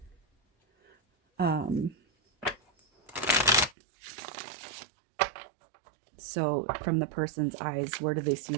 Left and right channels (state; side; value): drops out; left; at 3.8 s